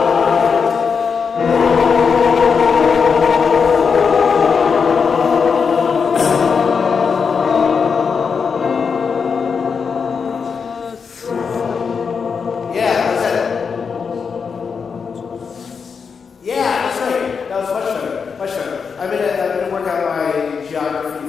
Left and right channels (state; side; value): quieter; right; 5.8 dB